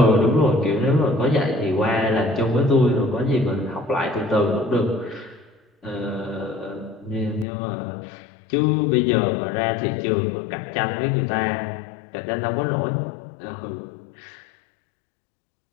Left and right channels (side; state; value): right; drops out; at 7.5 s